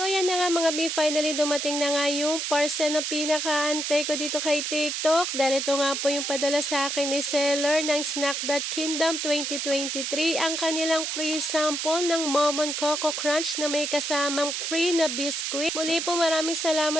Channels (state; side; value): noise; right; hiss, 2 dB below the sound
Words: yan na nga mga B, finally dumating na nga yung parcel na pinakaantay ko dito kay TikTok. Dahil ito nga po yung padala sa akin ni seller ng Snack.Kingdom 2023. Ang kanilang free sample ng Momon Coco Crunch na may kasamang free na biscuit. Muli po maraming